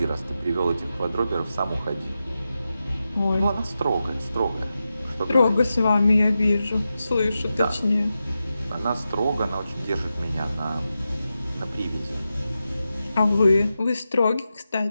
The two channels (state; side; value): inverted; both; correlation -0.90